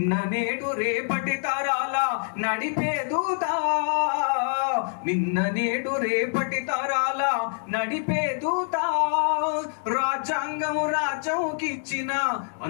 నేడు రేపటి తరాల నడిపే దూత, నిన్న నేడు రేపటి తరాల నడిపే దూత. రాజ్యాంగము రాజ్యంకిచ్చిన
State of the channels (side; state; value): right; silent; digital silence